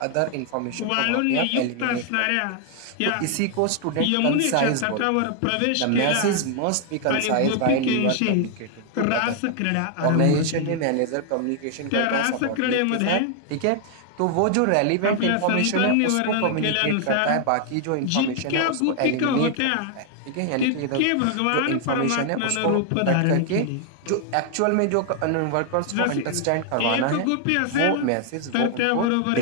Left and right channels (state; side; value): different; both; correlation 0.00